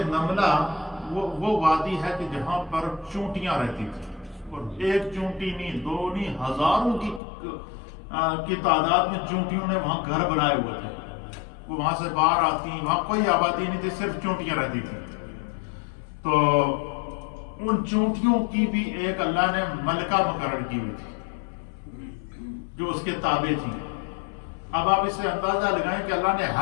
نملہ، وہ وادی ہے کہ جہاں پر چونٹیاں رہتی تھیں، اور ایک چونٹی نہیں، 2 نہیں، ہزاروں کی کی تعداد میں چونٹیوں نے وہاں گھر بنائے ہوئے تھے. وہ وہاں سے باہر آتی، وہاں کوئی آبادی نہیں تھی، صرف چونٹیاں رہتی تھیں. تو ان چونٹیوں کی بھی ایک اللہ نے ملکہ مقرر کی ہوئی تھی جو اس کے تابع تھی. اب آپ اس سے اندازہ لگائیں کہ اللہ نے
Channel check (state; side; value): drops out; right; at 7.2 s